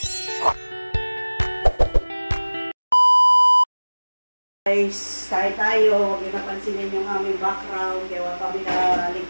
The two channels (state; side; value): inverted; both; correlation -1.00